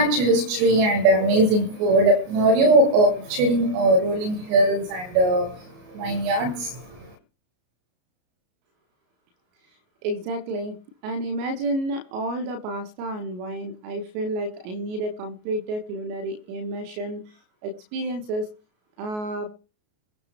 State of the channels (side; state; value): left; late; 33 ms